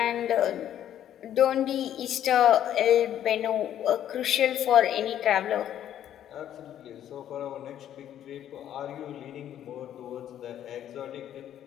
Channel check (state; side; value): quieter; right; 10.8 dB